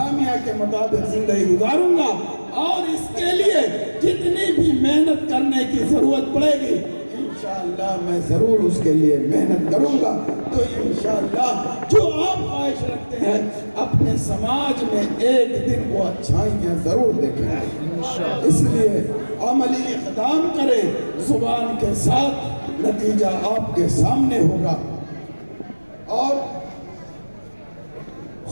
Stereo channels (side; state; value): both; inverted; correlation -1.00